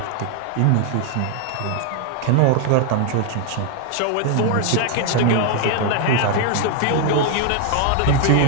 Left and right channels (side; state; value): both; different; correlation 0.00